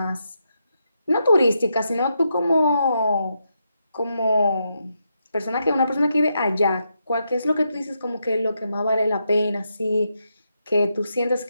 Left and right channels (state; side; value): inverted; both; correlation -0.82